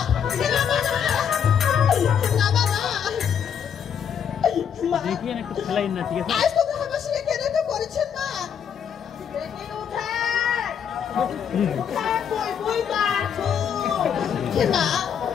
देखिए ना कुछ खिलाई ना ठीक है আজ তো হাবাসিকে কেন তো করেছেন মা মা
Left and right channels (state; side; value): quieter; right; 8.0 dB